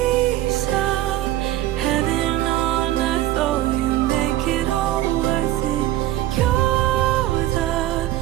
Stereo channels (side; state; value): left; quieter; 14.3 dB